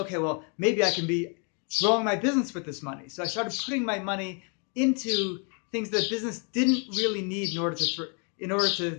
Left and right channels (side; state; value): right; quieter; 38.0 dB